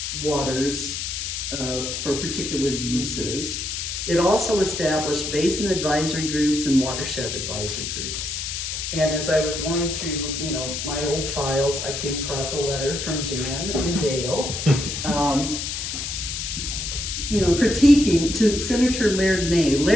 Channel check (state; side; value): noise; left; hiss, 4 dB below the sound